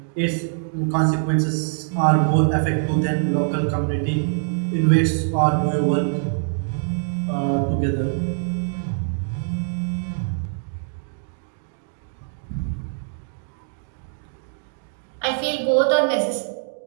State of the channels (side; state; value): left; silent; digital silence